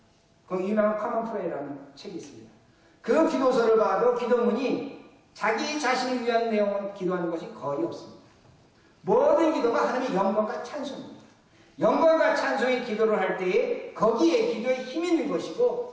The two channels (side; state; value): both; identical; correlation 1.00